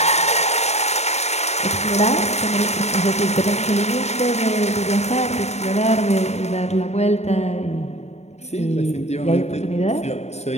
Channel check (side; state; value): right; late; 0.32 ms